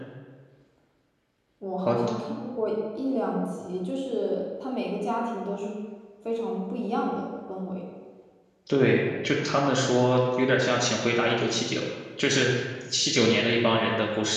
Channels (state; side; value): identical; both; correlation 1.00